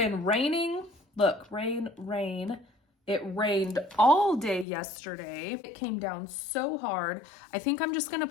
raining. Look, rain, rain. It rained all day yesterday. It came down so hard. I think I'm just gonna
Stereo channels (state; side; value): drops out; right; at 4.7 s